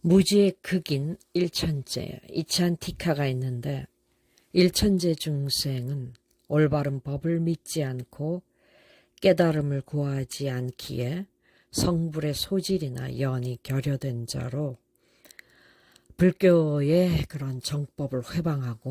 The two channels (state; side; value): identical; both; correlation 1.00